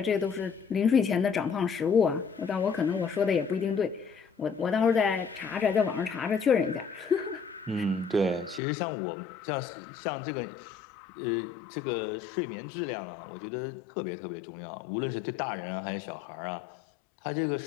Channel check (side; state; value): right; drops out; at 8.6 s